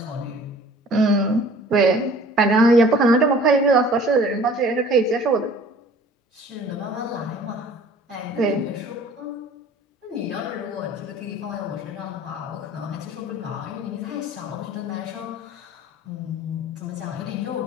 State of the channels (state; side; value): normal; both; correlation 0.49